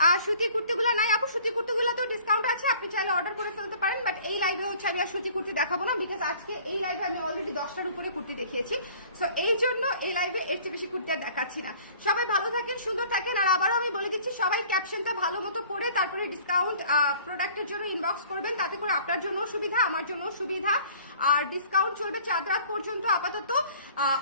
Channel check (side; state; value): both; inverted; correlation -0.52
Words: আর সুতি কুর্তিগুলো নাই আপু, সুতি কুর্তিগুলো তো ডিসকাউন্ট আছে, আপনি চাইলে অর্ডার করে ফেলতে পারেন। বাট এই লাইভে হচ্ছে আমি আর সুতি কুর্তি দেখাবো না, বিকজ আজকে এই লাইভে আমি অলরেডি 10টার উপরে কুর্তি দেখিয়েছি। সো এই জন্য এই লাইভে এর চেয়ে বেশি কুর্তি আর দেখাচ্ছি না। সবাই ভালো থাকেন, সুন্দর থাকেন। আর আবারও আমি বলে দিচ্ছি, সবাই ক্যাপশনটা ভালো মতো পড়ে তারপরে ডিসকাউন্ট প্রোডাক্টের জন্য ইনবক্স করবেন, তাতে করে আপনার জন্য সুবিধা, আমার জন্য সুবিধা। আর ডিসকাউন্ট চলবে 4 রাত পর্যন্ত আপাতত,